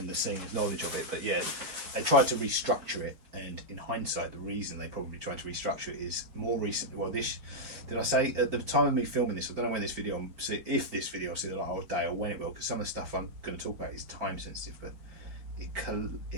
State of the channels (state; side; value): late; left; 4.8 ms